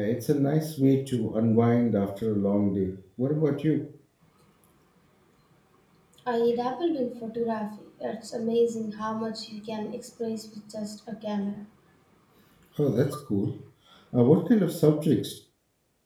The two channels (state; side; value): identical; both; correlation 1.00